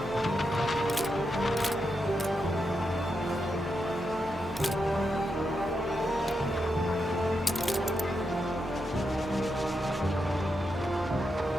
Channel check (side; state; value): both; normal; correlation 0.85